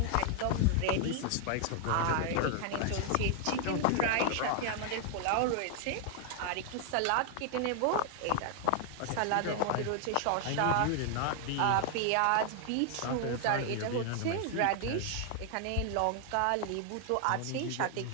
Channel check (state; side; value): different; both; correlation 0.00